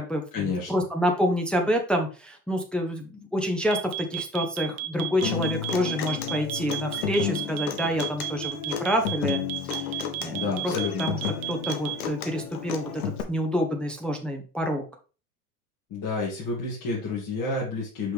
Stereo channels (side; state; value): both; normal; correlation 0.48